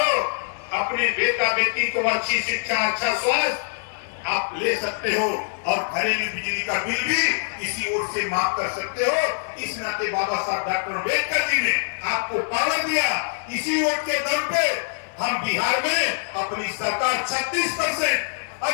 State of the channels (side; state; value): right; silent; digital silence